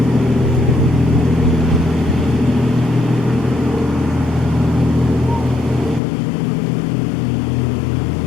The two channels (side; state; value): right; drops out; at 6.0 s